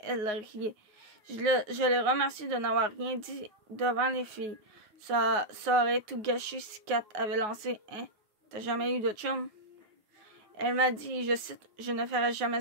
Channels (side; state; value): left; late; 9.5 ms